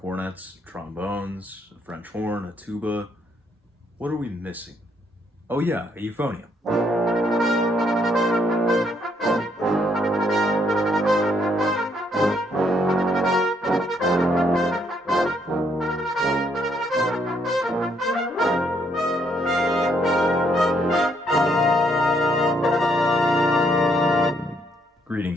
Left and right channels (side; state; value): both; normal; correlation 0.71